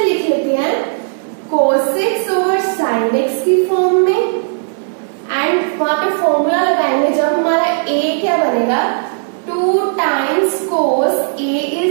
लिख लेते हैं कोस एक्स ओवर साइन एक्स की फॉर्म में, एंड वहां पे फॉर्मूला लगाएंगे जब हमारा ए क्या बनेगा 2 times cos A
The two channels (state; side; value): silent; left; digital silence